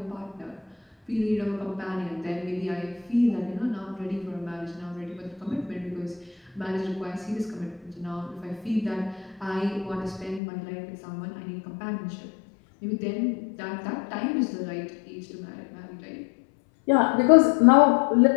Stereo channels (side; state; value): right; drops out; at 10.4 s